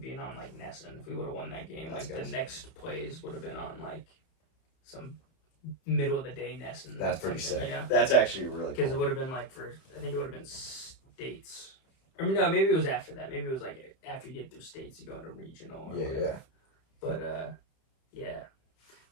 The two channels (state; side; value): late; right; 31 ms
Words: being on like NESN. If we would have won that game, like the next plays would have been on like some middle of the day NESN. That's pretty sick. You know? That's actually really cool. Because it would have been like I think it would have been states. I mean, no, maybe it was after that. Maybe it was like after you get through states, you go into regional or whatever. But